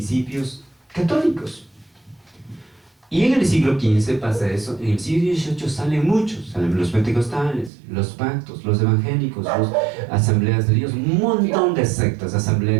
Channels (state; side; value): drops out; left; at 7.7 s